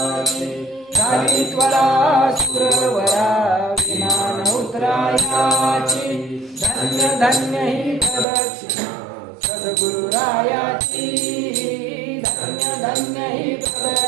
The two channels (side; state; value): left; drops out; at 8.2 s